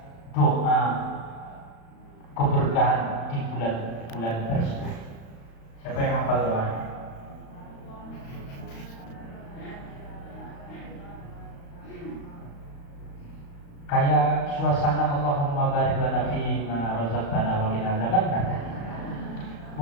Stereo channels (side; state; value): right; late; 35 ms